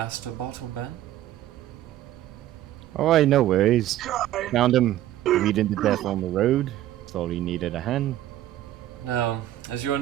Bottleben. Oh, I no worries. Found him bleeding to death on the road. Thought he needed a hand. Now, as you are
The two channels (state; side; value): quieter; left; 13.4 dB